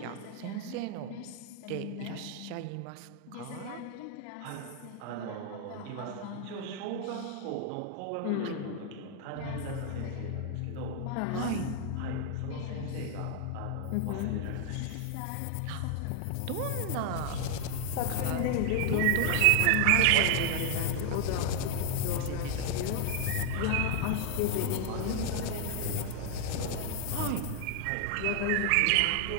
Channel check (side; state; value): both; different; correlation 0.00